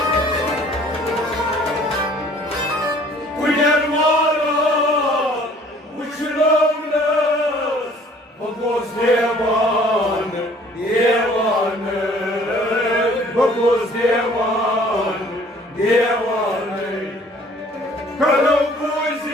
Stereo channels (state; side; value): normal; both; correlation 0.55